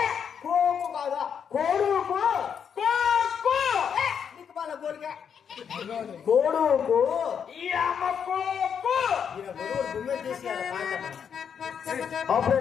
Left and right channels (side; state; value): right; quieter; 7.5 dB